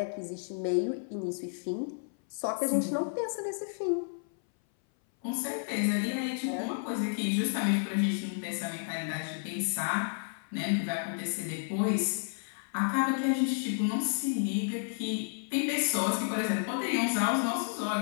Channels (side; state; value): right; silent; 57 dB below the other